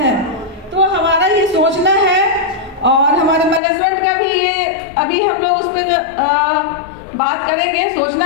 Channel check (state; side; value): drops out; right; at 3.6 s